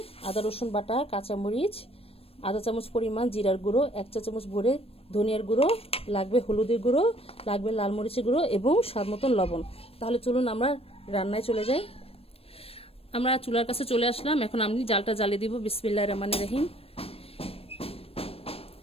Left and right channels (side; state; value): right; late; 0.28 ms